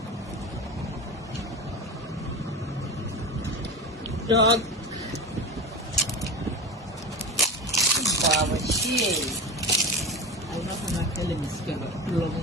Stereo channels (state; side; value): normal; both; correlation 0.27